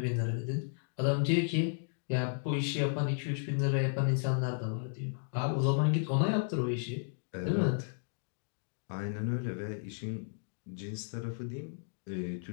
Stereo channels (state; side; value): silent; right; digital silence